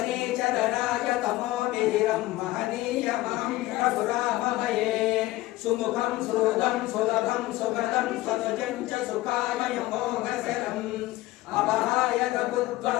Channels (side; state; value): right; quieter; 17.7 dB